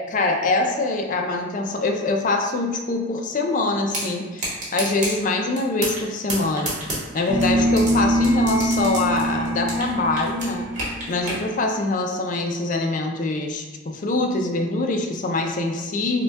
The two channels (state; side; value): normal; both; correlation 0.30